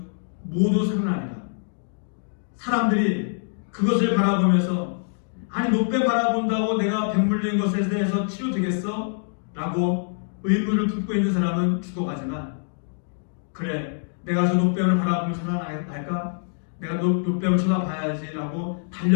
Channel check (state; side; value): silent; right; digital silence